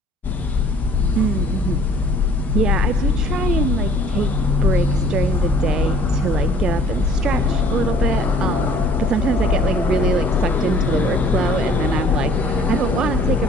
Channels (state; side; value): normal; both; correlation 0.54